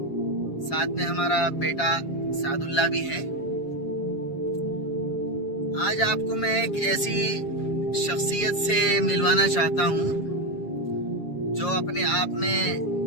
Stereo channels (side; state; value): right; late; 7.3 ms